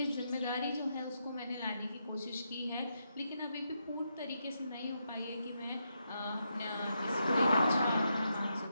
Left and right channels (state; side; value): inverted; both; correlation -0.82